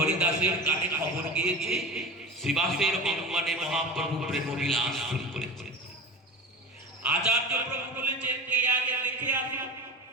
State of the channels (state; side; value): normal; both; correlation 0.31